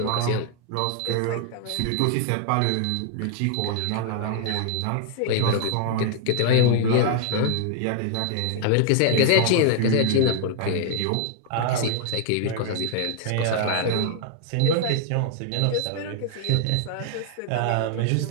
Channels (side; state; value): both; different; correlation 0.00